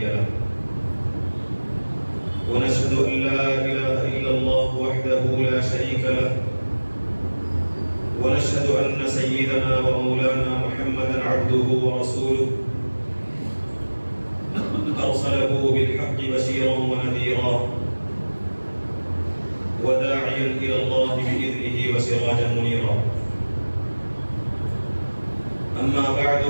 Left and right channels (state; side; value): inverted; both; correlation -1.00